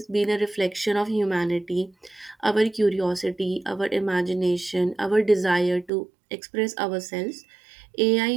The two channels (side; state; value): left; drops out; at 5.9 s